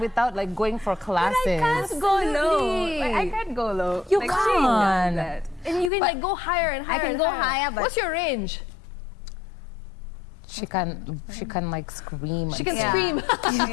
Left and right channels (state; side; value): drops out; right; at 5.9 s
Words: like going for classes. But I can't go low. I can't go low. You like, can't. And you can like go higher and higher. I can go higher, but what's your range? She can like scream. She can Yeah. scream.